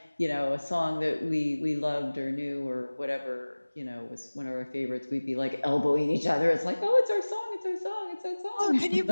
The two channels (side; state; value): both; inverted; correlation -1.00